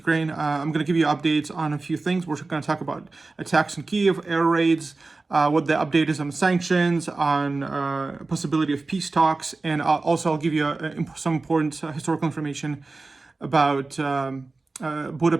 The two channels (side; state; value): left; quieter; 3.6 dB